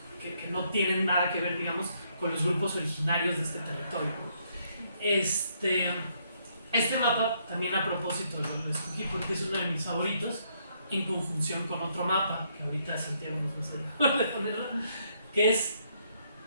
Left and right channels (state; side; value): inverted; both; correlation -0.72